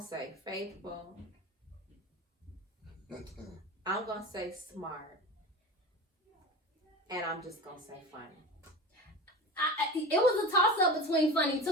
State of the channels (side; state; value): both; normal; correlation 0.31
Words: faithful. I'm gonna say smart, and I'm just gonna say funny. It was a toss up between funny